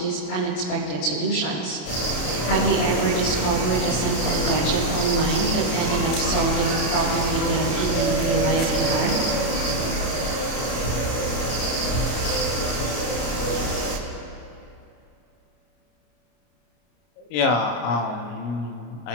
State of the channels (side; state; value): right; late; 33 ms